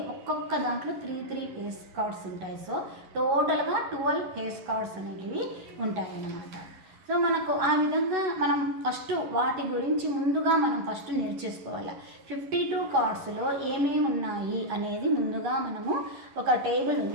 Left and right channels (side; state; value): left; late; 11 ms